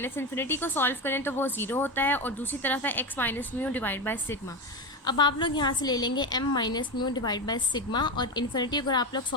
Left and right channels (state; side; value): normal; both; correlation 0.18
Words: इन्फिनिटी को सॉल्व करें तो वो 0 होता है, और दूसरी तरफ है x minus mu divide by sigma. अब आप लोग यहाँ से ले लेंगे m minus mu divide by sigma, और इन्फिनिटी अगर आप लोग